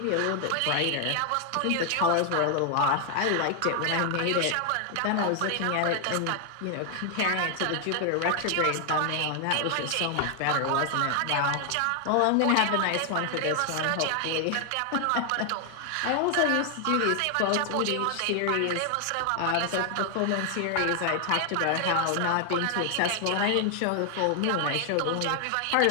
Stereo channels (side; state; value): both; different; correlation 0.00